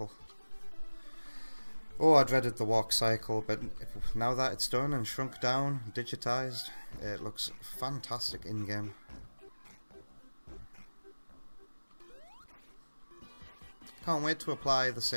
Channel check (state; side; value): inverted; both; correlation -1.00